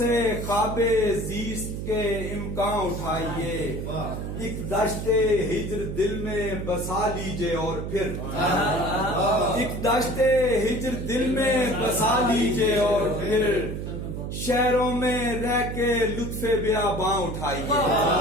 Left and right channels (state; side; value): noise; right; hum, 5 dB below the sound